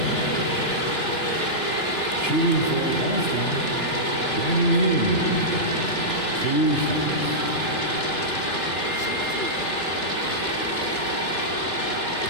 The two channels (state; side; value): late; right; 2.9 ms